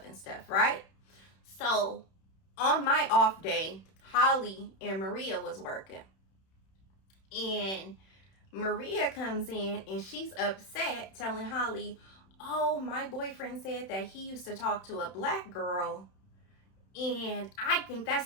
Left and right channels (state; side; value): late; right; 31 ms